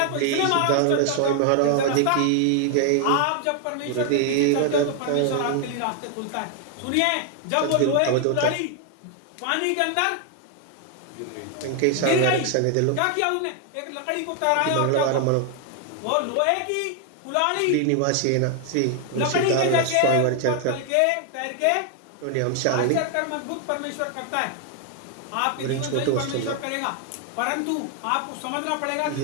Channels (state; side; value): different; both; correlation 0.00